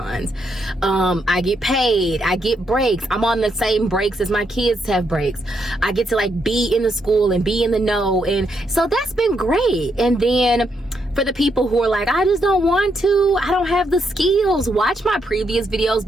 I get paid. I get breaks. I'm on the same breaks as my kids have breaks. I get to like be in the school and be in the know. And so that's been great. And then for the people who are like, I just don't want to, I don't have the skills, watch my previous videos,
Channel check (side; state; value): both; normal; correlation 0.78